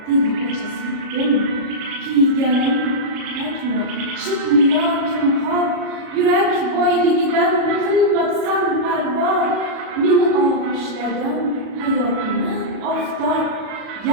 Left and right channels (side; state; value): left; late; 37 ms